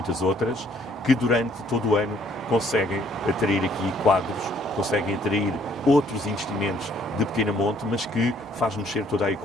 outras, que durante todo o ano conseguem atrair aqui quadros, conseguem atrair outros investimentos de pequena monte, mas que faz mexer toda a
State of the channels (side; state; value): both; normal; correlation 0.64